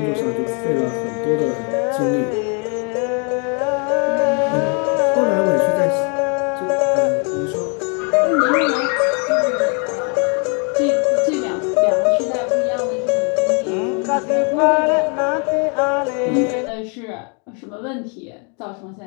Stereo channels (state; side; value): quieter; right; 37.3 dB